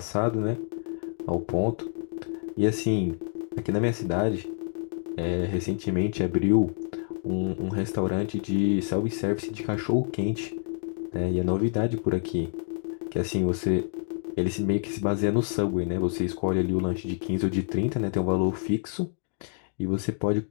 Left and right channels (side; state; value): right; silent; digital silence